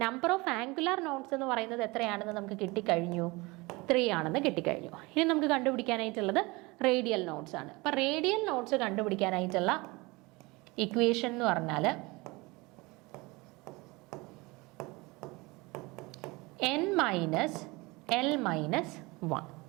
നമ്പർ ഓഫ് ആംഗുലാർ നോട്ട്സ് എന്ന് പറയുന്നത് എത്രയാണെന്ന് നമുക്ക് കിട്ടിക്കഴിഞ്ഞു, 3 ആണെന്ന് കിട്ടിക്കഴിഞ്ഞു. ഇനി നമുക്ക് കണ്ടുപിടിക്കാനായിട്ടുള്ളത് റേഡിയൽ നോട്ട്സ് ആണ്. അപ്പം റേഡിയൽ നോട്ട്സ് കണ്ടുപിടിക്കാനായിട്ടുള്ള ഇക്വേഷൻ എന്ന് പറഞ്ഞാൽ n മൈനസ് എൽ മൈനസ് 1.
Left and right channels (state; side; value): quieter; left; 24.1 dB